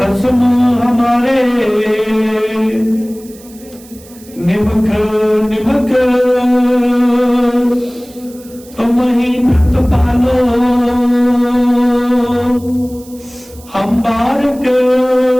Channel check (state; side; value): noise; right; hiss, 23 dB below the sound